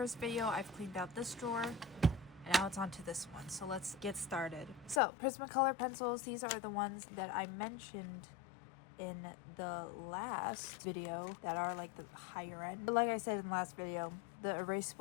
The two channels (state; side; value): drops out; right; at 5.0 s